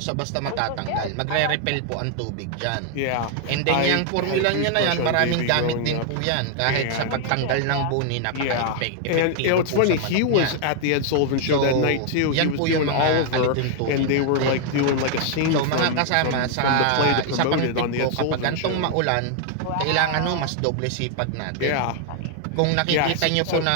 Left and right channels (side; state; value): both; different; correlation 0.00